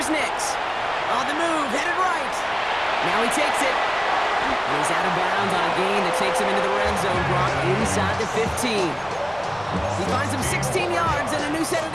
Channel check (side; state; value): left; noise; rumble, 23 dB below the sound